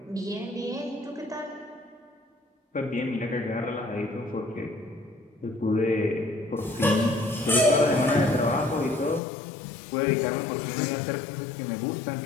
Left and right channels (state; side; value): drops out; right; at 9.2 s